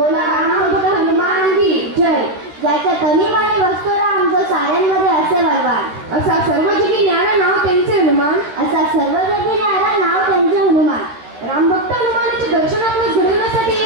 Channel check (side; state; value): left; late; 13 ms